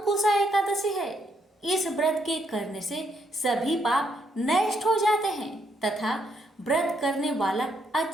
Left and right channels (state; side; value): normal; both; correlation 0.74